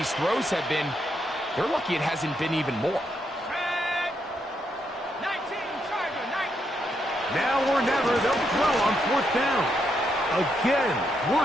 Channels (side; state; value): both; normal; correlation 0.79